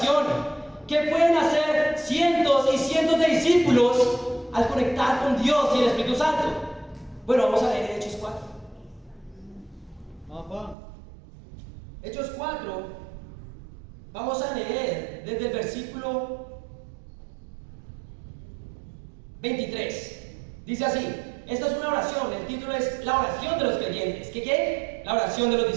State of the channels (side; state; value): left; drops out; at 10.8 s